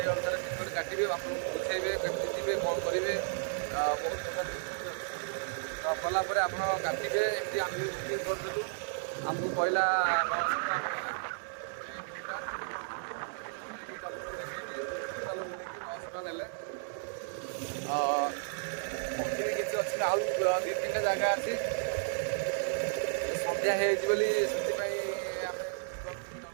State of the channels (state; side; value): silent; left; digital silence